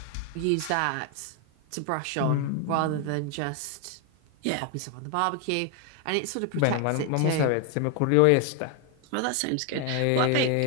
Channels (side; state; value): both; different; correlation 0.01